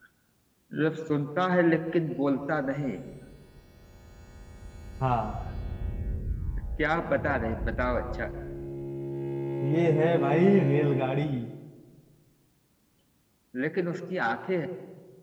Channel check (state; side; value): identical; both; correlation 1.00